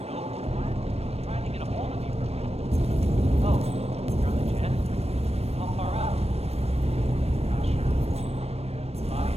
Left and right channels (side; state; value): left; late; 0.30 ms